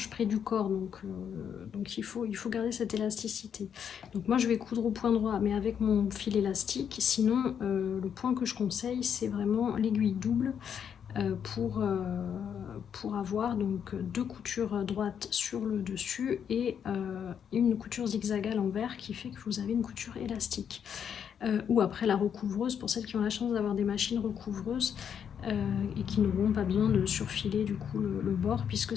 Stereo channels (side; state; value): right; quieter; 8.0 dB